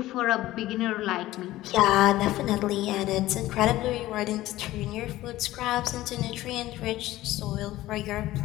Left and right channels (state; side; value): quieter; right; 16.1 dB